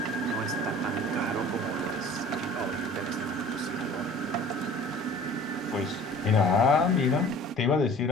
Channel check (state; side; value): normal; both; correlation 0.46